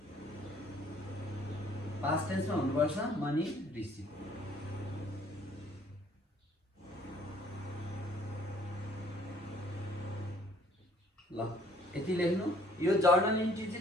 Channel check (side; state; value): both; normal; correlation 0.59